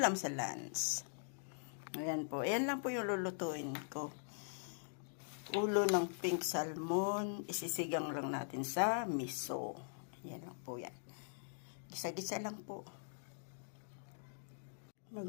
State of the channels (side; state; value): right; silent; digital silence